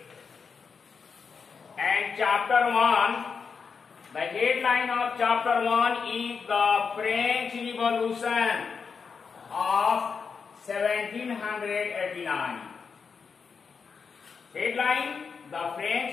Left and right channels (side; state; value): right; quieter; 5.7 dB